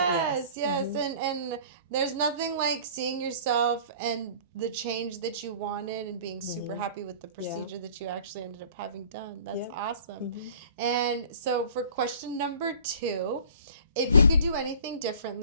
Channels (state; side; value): inverted; both; correlation -0.47